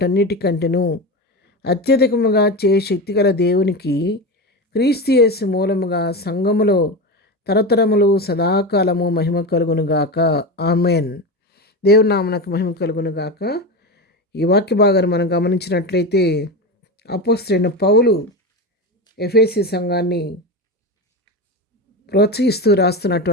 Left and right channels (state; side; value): normal; both; correlation 0.21